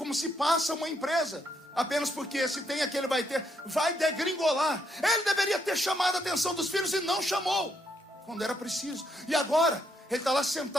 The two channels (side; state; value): both; normal; correlation 0.75